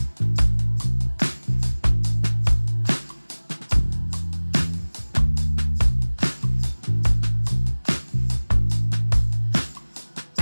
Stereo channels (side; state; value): both; inverted; correlation -1.00